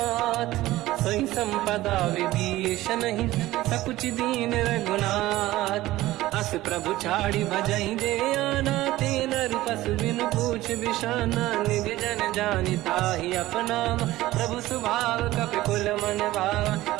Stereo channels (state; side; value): quieter; left; 16.7 dB